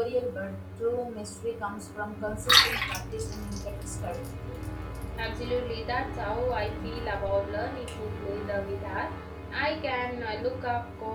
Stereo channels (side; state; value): both; identical; correlation 1.00